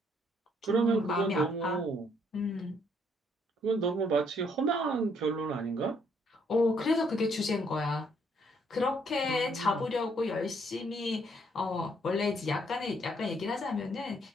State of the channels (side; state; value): both; normal; correlation 0.69